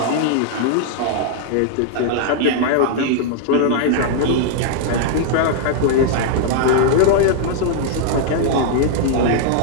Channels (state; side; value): different; both; correlation -0.01